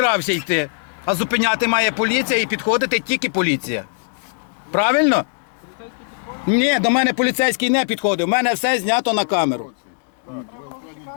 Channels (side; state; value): right; silent; digital silence